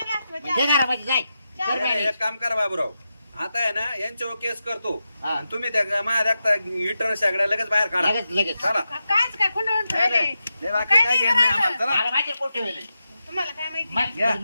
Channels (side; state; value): both; inverted; correlation -0.89